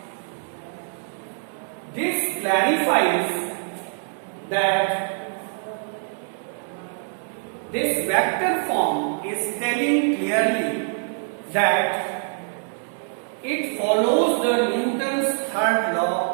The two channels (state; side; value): silent; left; digital silence